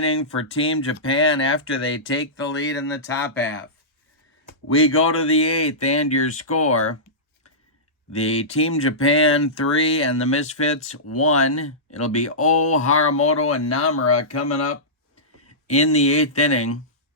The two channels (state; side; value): normal; both; correlation -0.17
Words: for Team Japan after they take the lead in the top half. We go to the 8th, and your score. The Team Japan 3 and the Misfits 1. It'll be O, Haramoto, and Namura coming up in the 8th inning.